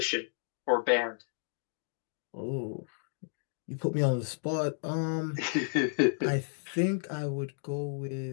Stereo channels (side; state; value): right; silent; digital silence